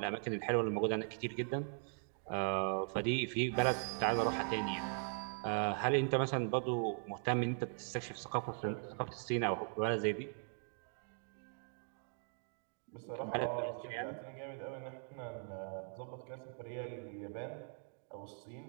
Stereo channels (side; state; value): left; silent; 51 dB below the other